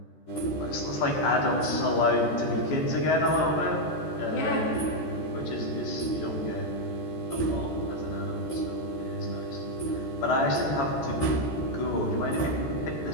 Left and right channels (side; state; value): right; late; 14 ms